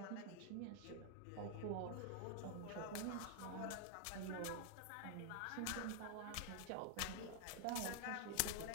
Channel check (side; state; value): both; different; correlation 0.00